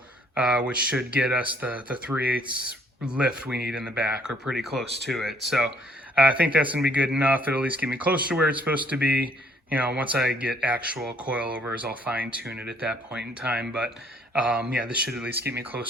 which should get us the 3/8 lift we need in the back, or pretty close to it. So I think that's going to be good enough. It'll at least get me close to where it's supposed to be. Once I get actual coilovers, I'll fine tune it at that point in time. But yeah, this should at least get me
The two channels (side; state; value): both; normal; correlation 0.63